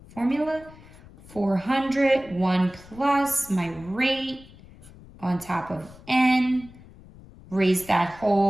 formula. 400, 1 plus my rate on top of N. Raise that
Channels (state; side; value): noise; left; rumble, 21 dB below the sound